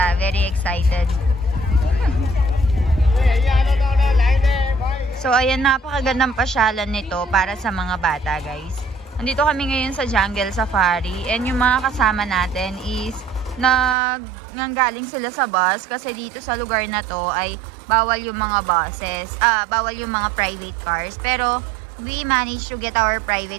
Very excited. So ayan, napakagandang pasyalan nito para sa mga bata guys. Nandito kami ngayon sa Jungle Safari and yung mga kasama natin is nanggaling sila sa bus kasi dito sa lugar na to ay bawal yung mga buses, bawal yung mga private cars. Pero we managed to get our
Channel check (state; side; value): drops out; left; at 14.0 s